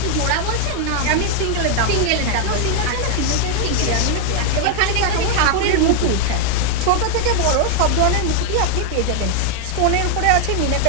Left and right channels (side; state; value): both; different; correlation 0.00